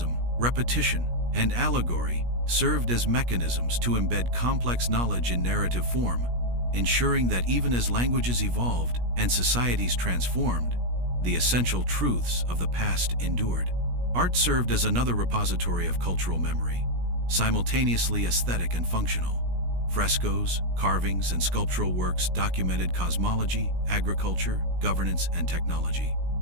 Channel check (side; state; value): left; late; 17 ms